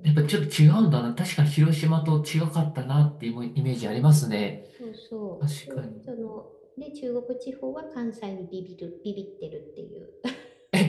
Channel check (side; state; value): both; identical; correlation 1.00